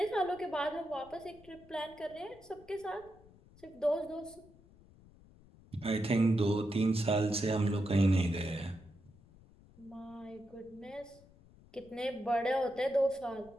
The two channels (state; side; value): noise; left; rumble, 24 dB below the sound